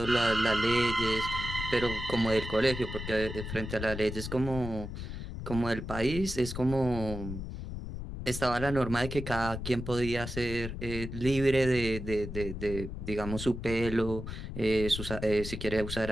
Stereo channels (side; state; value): left; noise; rumble, 7 dB below the sound